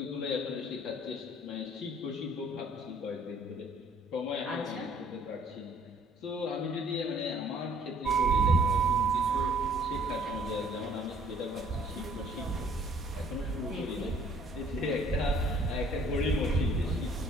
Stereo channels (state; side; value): normal; both; correlation 0.58